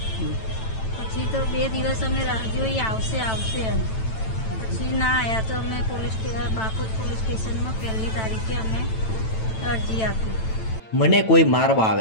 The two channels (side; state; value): right; late; 9.0 ms